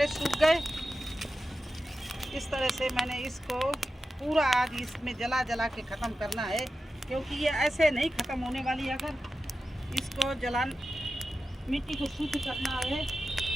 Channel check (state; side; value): normal; both; correlation 0.92